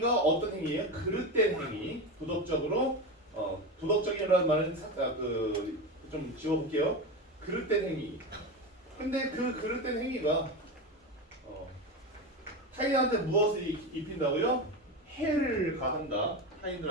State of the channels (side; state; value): both; normal; correlation 0.20